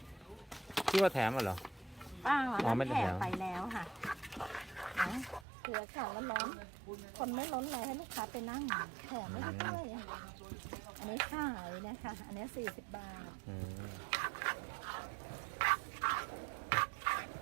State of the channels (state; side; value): drops out; left; at 5.5 s